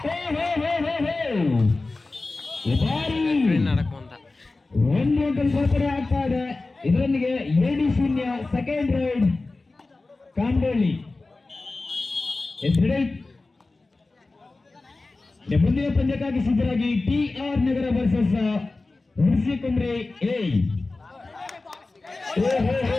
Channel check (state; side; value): quieter; right; 3.4 dB